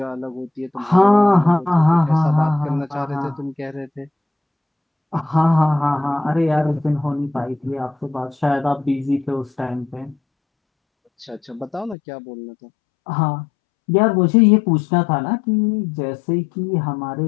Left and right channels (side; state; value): right; drops out; at 12.0 s